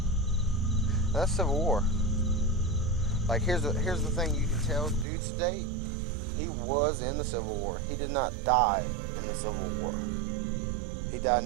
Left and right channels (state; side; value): drops out; left; at 5.1 s